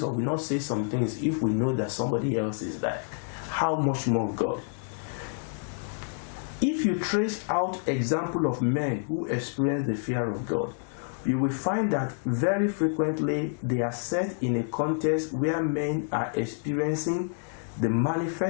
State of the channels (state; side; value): silent; right; 59 dB below the other